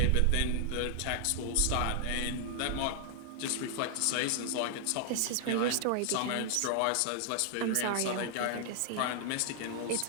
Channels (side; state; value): both; different; correlation 0.00